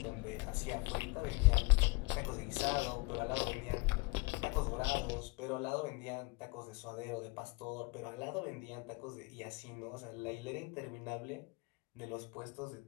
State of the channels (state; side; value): quieter; right; 25.7 dB